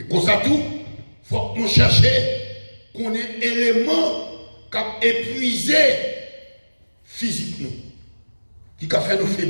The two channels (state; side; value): inverted; both; correlation -1.00